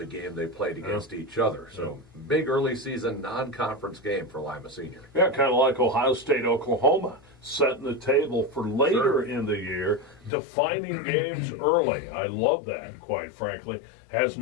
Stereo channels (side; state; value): right; drops out; at 10.3 s